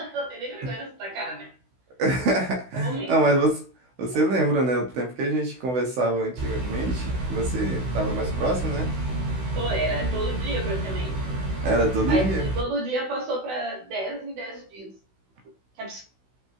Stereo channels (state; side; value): late; left; 16 ms